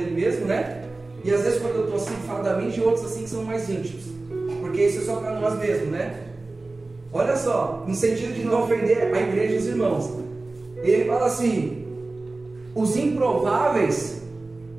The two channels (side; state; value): left; quieter; 3.2 dB